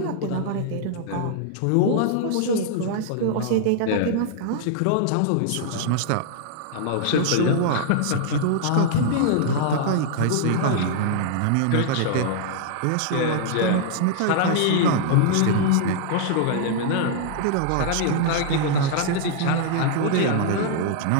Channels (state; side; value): different; both; correlation -0.01